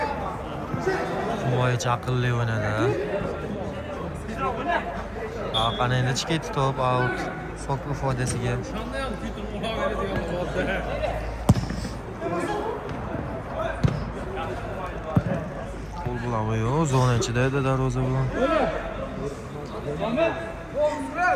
Himoyachi aqlli o'ynadi. Qani endi chiqib ketdi top, out. Sokuv foydasiga. Qo'l bilan yo'q, zona ichida edi darvozabon.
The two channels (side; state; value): both; identical; correlation 1.00